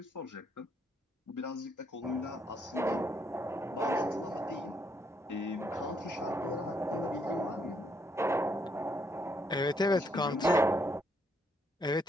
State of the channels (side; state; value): both; normal; correlation 0.73